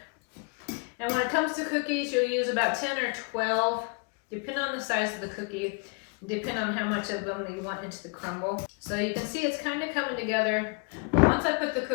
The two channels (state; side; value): quieter; right; 35.3 dB